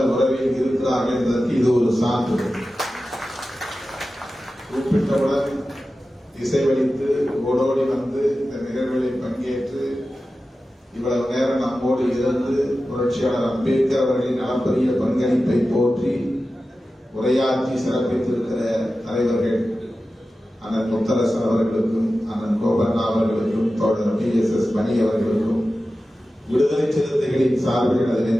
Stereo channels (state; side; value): normal; both; correlation 0.94